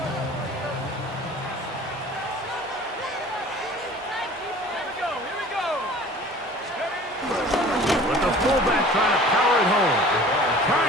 But the fullback trying to power it home.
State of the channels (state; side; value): normal; both; correlation 0.45